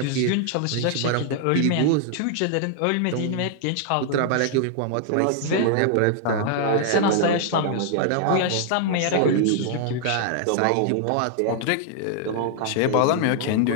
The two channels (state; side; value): different; both; correlation 0.00